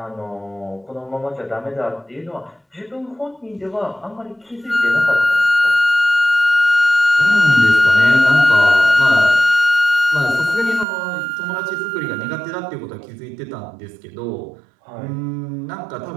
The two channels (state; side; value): drops out; left; at 10.9 s